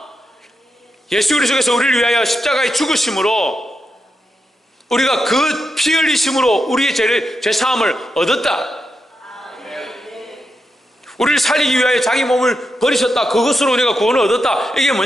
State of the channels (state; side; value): normal; both; correlation 0.86